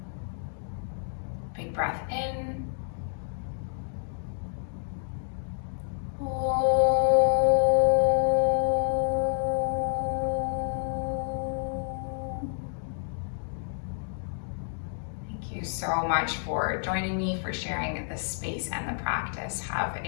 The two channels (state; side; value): silent; right; digital silence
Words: big breath in, so much for joining me, for sharing the space and the practice. Have